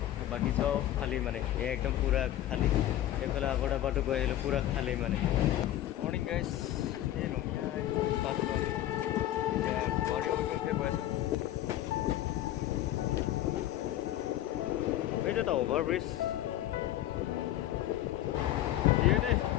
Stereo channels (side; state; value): right; quieter; 13.3 dB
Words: বাকী চব খালী মানে একদম পুৰা খালী। এইফালে আগৰ ডাবাটো গৈ আহিলোঁ পুৰা খালী মানে। মৰ্ণিং গাইজ, এই ৰঙিয়া পালোঁ আমি এতিয়া গুৱাহাটী অভিমুখে গৈ আছোঁ। এইটো এটা অভাৰব্ৰিজ দিয়ে দে,